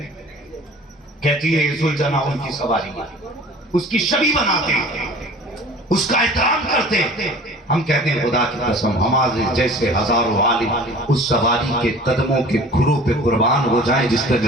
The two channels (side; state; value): both; normal; correlation 0.44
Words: कहती है जुलजना उनकी सवारी, उसकी छवि बनाते हैं, उसका एहतराम करते हैं। हम कहते हैं खुदा की कसम हमारे जैसे हजारों आलिम उस सवारी के कदमों के खुरों पे कुर्बान हो जाएं जिस पे